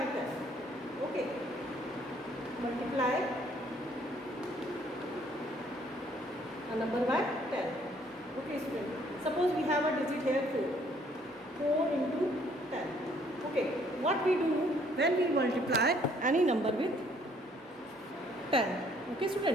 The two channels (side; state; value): both; normal; correlation 0.63